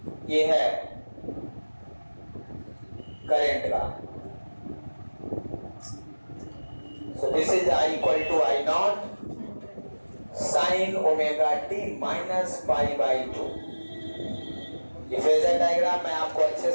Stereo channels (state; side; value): inverted; both; correlation -1.00